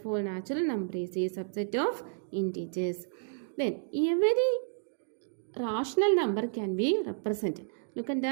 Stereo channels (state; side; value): silent; left; digital silence